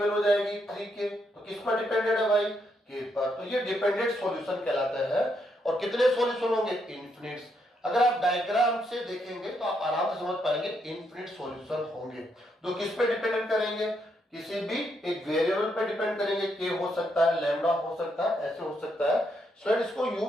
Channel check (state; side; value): normal; both; correlation 0.77